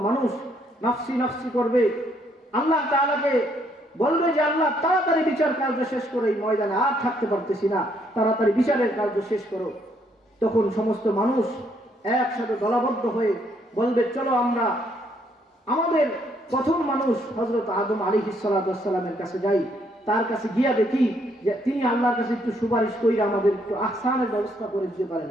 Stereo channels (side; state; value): both; normal; correlation 0.70